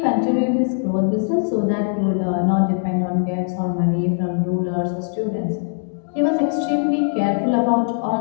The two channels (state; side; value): silent; right; digital silence